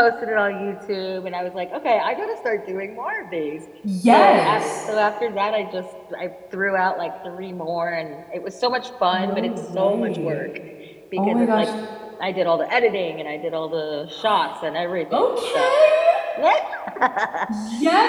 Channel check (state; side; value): identical; both; correlation 1.00